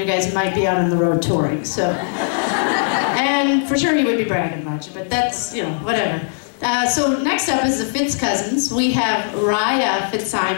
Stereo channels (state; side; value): silent; right; 67 dB below the other